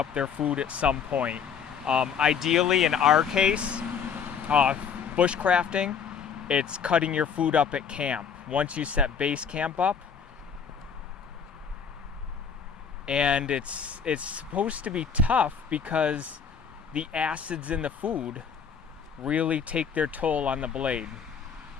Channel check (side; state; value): right; quieter; 6.8 dB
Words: their food at some point. Ideally, in our case, bushcrafting, it's cutting your food up at camp. Once you set base camp up, and it's supposed to be tough because the acids in the food really take their toll on the blade.